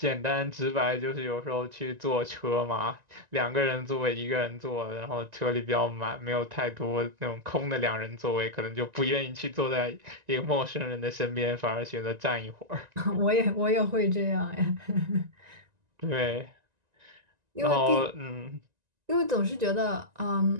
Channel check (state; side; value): late; left; 1.9 ms